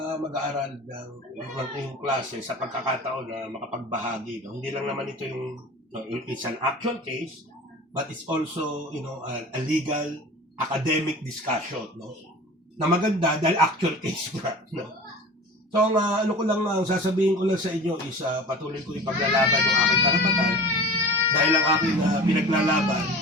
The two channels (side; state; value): both; normal; correlation 0.38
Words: mag-aaral ng iyong klase sa pagkakataon na makapagbahagi. No? Hindi lang naman ito yung, no, it's an actual case, but it's also, a legal academic discussion, no? Na maganda dahil actual case nga, no? So, ang sasabihin ko lang sa inyo is patuloy ko ipaglalaban ng aking karapatan dahil ang aking pinaglalaban